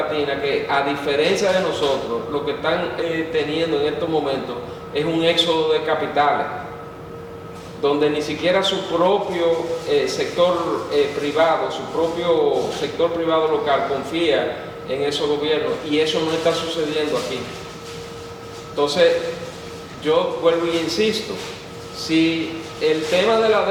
que, a diferencia de nosotros, lo que están teniendo en estos momentos es un éxodo de capitales, donde ni siquiera su propio sector privado, su propio sector privado local confía en esos gobiernos, y eso no está sucediendo aquí. Entonces, yo vuelvo y insisto, si el tema de la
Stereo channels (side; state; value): both; identical; correlation 1.00